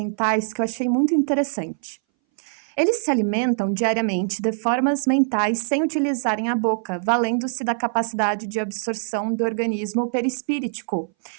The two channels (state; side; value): silent; left; 61 dB below the other